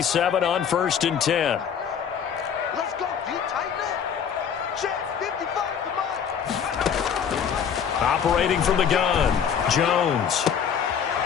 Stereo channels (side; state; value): right; quieter; 7.7 dB